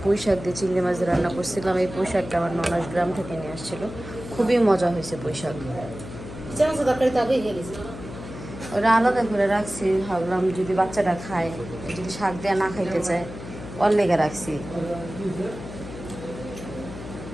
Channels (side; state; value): left; noise; hum, 12 dB below the sound